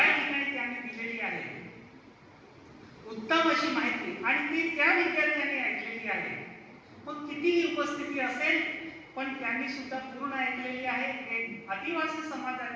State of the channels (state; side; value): identical; both; correlation 1.00